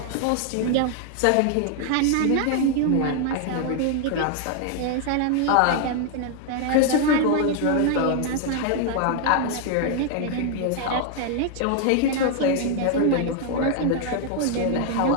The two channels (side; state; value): both; different; correlation 0.00